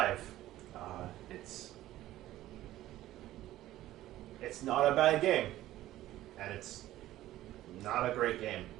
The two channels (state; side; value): quieter; left; 14.7 dB